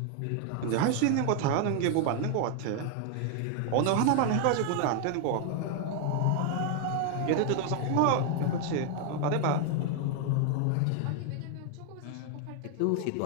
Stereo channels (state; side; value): different; both; correlation 0.00